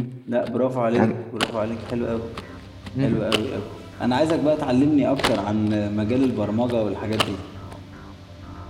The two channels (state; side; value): identical; both; correlation 1.00